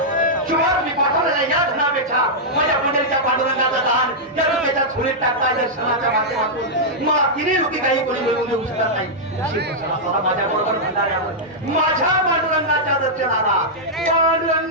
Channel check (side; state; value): both; normal; correlation -0.08